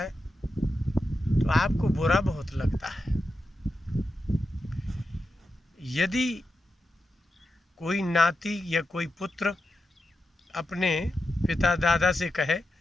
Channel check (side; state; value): both; normal; correlation 0.89